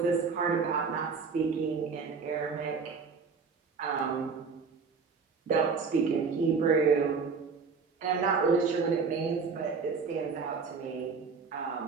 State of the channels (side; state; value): left; quieter; 5.2 dB